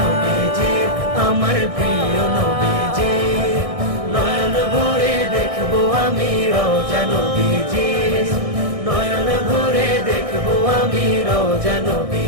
আমার প্রিয় নবীজি। নয়ন ভরে দেখবো আমি রওজা নবীজি, নয়ন ভরে দেখবো আমি রওজা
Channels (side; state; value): left; late; 1.6 ms